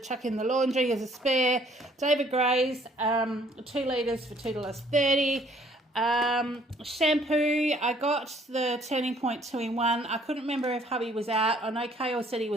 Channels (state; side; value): normal; both; correlation 0.61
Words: in the laundry as a spare. David Gray's 2 litres for $2.30. Shampoo, I got the Turning Point 2-in-1. I couldn't remember if hubby was out. I know Kale said he